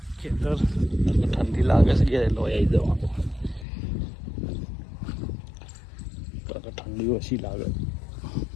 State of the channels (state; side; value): drops out; right; at 3.7 s